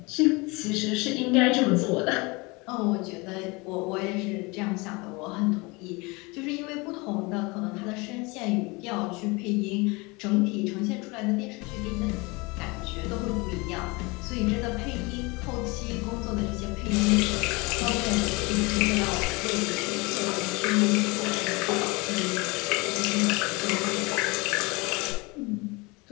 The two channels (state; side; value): quieter; right; 26.0 dB